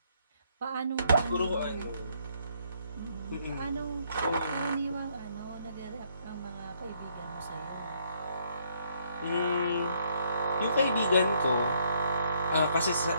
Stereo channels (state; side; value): inverted; both; correlation -0.69